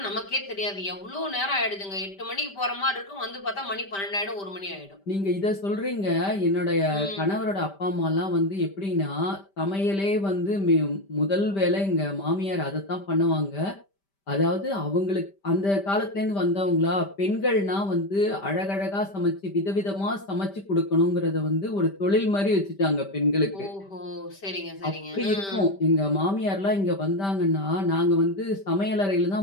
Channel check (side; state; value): right; late; 5.1 ms